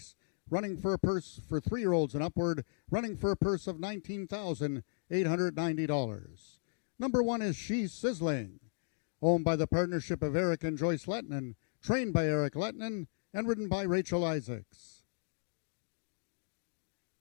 running for a purse for 3-year-olds and upward, running for a purse of $19,890. Number 1 is She's Sizzling, owned by the partnership of Eric and Joyce Lettinen, trained by Eric Lettinen, and ridden by Rachel Isaacs.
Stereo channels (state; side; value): silent; right; digital silence